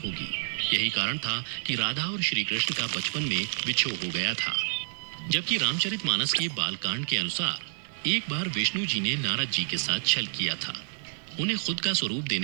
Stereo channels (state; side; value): silent; left; 56 dB below the other